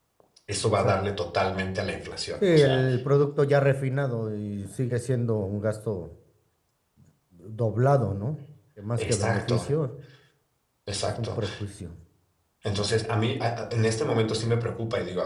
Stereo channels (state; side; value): identical; both; correlation 1.00